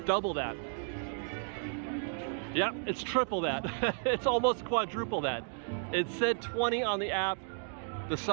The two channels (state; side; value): silent; left; 56 dB below the other